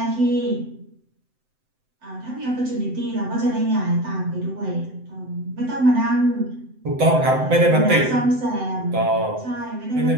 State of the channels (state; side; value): late; left; 7.8 ms